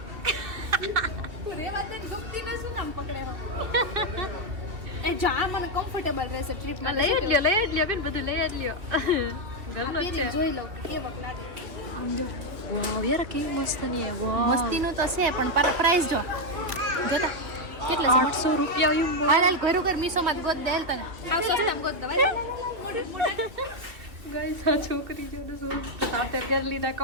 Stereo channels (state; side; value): late; left; 2.9 ms